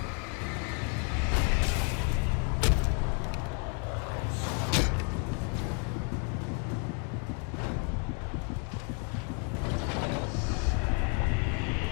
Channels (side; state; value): right; quieter; 36.3 dB